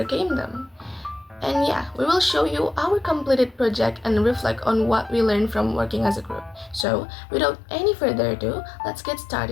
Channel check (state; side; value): drops out; right; at 6.9 s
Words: them. And yeah, we will show you our completed project and reflect on what we learned from working as a group. So, without any further ado, let's get